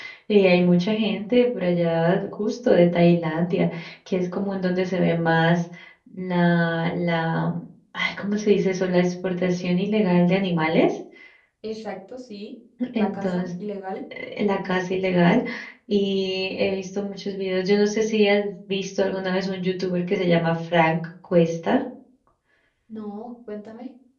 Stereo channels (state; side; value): identical; both; correlation 1.00